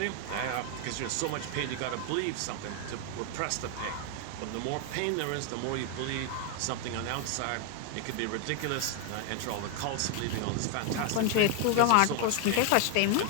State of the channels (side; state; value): both; different; correlation 0.00